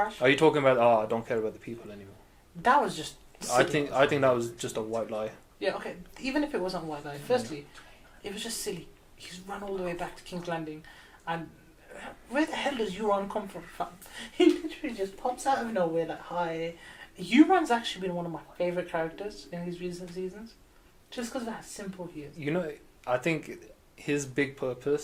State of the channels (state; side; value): identical; both; correlation 1.00